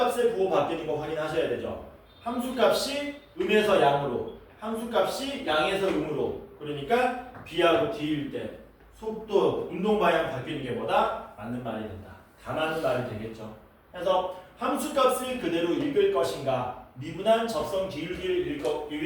부호 바뀌는 거 확인하셔야 되죠. 함수값이 음에서 양으로, 함수값이 양에서 음으로. 그러니까 B하고 D일 때 속도, 운동 방향 바뀌는 게 뭐다? 맞는 말이 된다. 다 맞는 말이 되겠죠. 그래서 함수값을 그대로 읽을 것인가, 미분한 접선 기울기를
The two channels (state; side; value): identical; both; correlation 1.00